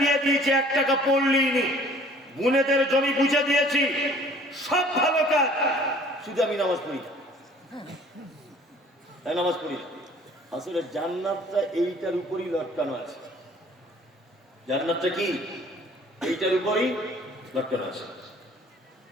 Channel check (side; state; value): both; normal; correlation 0.53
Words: বিয়ে দিয়েছি, 1 টাকা পড়লিনি, বোনেদের জমি বুঝে দিয়েছি, সব ভালো কাজ, শুধু আমি নামাজ পড়ি না, নামাজ পড়ি না। আসলে জান্নাতটা এইটার উপরই লটকানো আছে, জান্নাতটা কি এইটার উপরই লটকানো আছে।